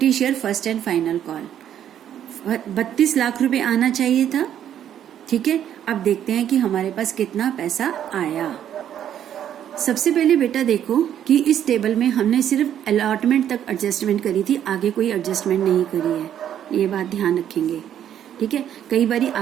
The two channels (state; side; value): quieter; left; 10.2 dB